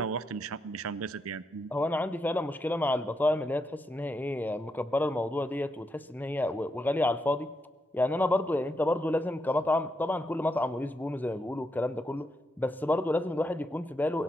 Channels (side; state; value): both; normal; correlation 0.82